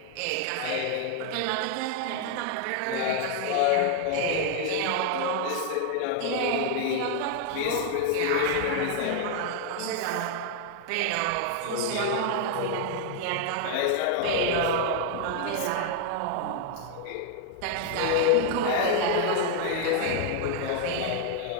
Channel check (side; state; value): both; different; correlation 0.00